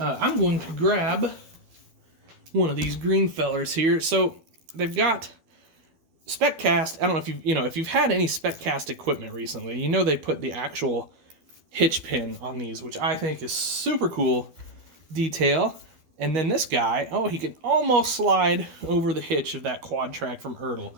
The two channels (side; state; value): left; late; 12 ms